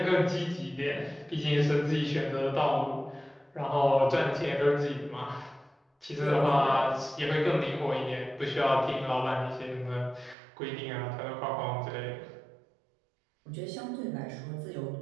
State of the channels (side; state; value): left; drops out; at 10.4 s